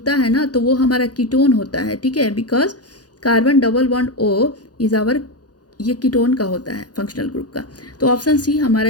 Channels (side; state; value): right; late; 0.68 ms